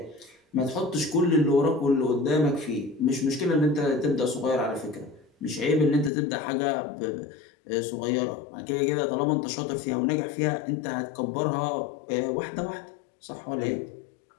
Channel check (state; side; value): drops out; right; at 6.1 s